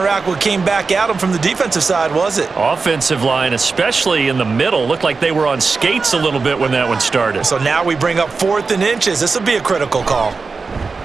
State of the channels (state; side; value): quieter; left; 4.5 dB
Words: what came back at them from the defensive side, was it? Offensive line, especially in the middle, looked like they were on skates a little bit when that one started. So now we bring up 4th and inches. This will be a critical call.